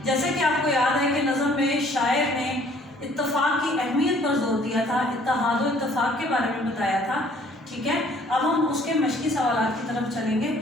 جیسے کہ آپ کو یاد ہے کہ نظم میں شاعر نے اتفاق کی اہمیت پر زور دیا تھا، اتحاد و اتفاق کے بارے میں بتایا تھا، ٹھیک ہے۔ اب ہم اس کے مشقی سوالات کی طرف چلیں گے۔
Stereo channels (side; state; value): both; normal; correlation 0.58